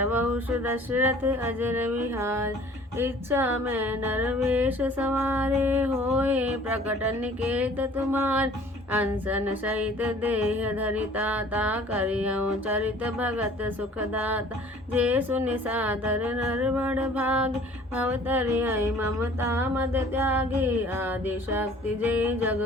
दशरथ अजर विहार इच्छा में नरवेश सवारे होए प्रकट निकेत तुम्हार अनसन सहित देह धरिता ता करियऊँ चरित भगत सुखदाता जे सुनि सादर नर बड़ भाग भवतरिय ममता मद त्यागी आदि शक्ति जे जग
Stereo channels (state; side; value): normal; both; correlation 0.51